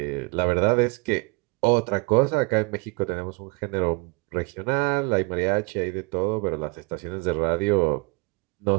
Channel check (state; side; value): quieter; left; 31.1 dB